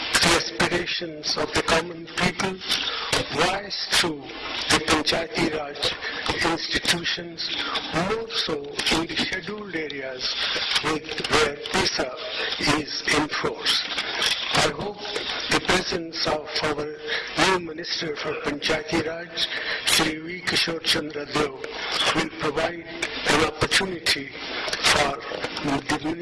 the aspirations of the common people voiced through the Panchayati Raj institutions, more so in the scheduled areas where PISA is in force. I hope the presence of our new Minister for Panchayati Raj, Shri V. Kishore Chandra Deo, will provide an opportunity for the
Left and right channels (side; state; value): both; identical; correlation 1.00